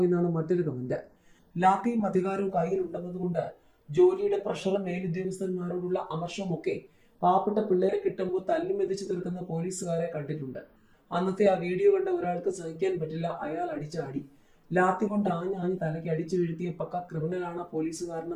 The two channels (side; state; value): both; identical; correlation 1.00